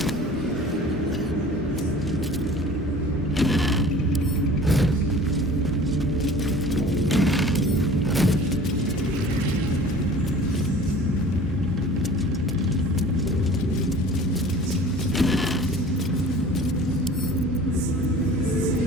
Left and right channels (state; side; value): normal; both; correlation 0.44